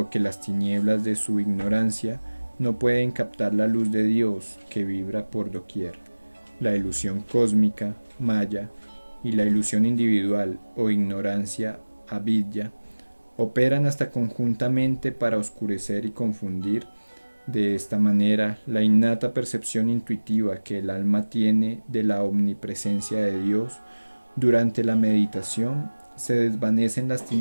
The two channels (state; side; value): inverted; both; correlation -1.00